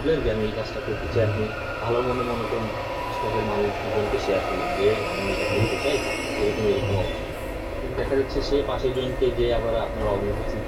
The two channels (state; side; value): identical; both; correlation 1.00